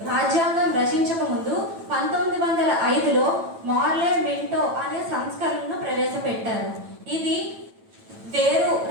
రాజ్యాంగం రచించక ముందు 1905లో మార్లే మింటో అనే సంస్కరణను ప్రవేశపెట్టారు. ఇది వేరు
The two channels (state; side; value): late; left; 9.0 ms